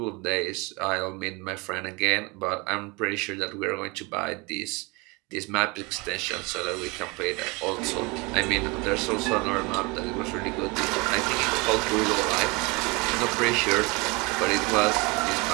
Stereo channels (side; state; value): left; quieter; 26.8 dB